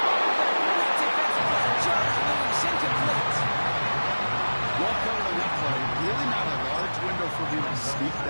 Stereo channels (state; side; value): inverted; both; correlation -1.00